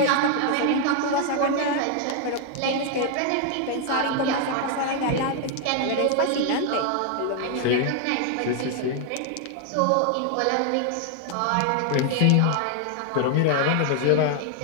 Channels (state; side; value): different; both; correlation 0.00